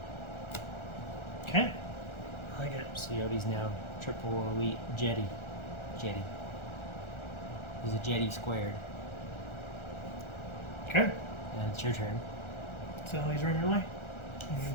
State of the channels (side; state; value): right; late; 1.4 ms